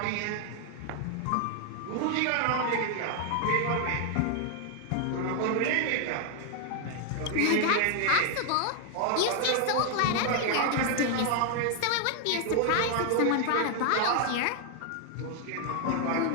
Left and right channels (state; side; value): different; both; correlation 0.00